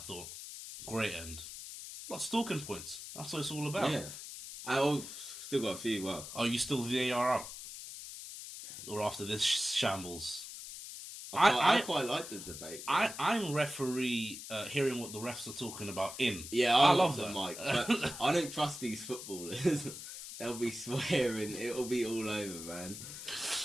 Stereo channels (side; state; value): left; noise; hiss, 10 dB below the sound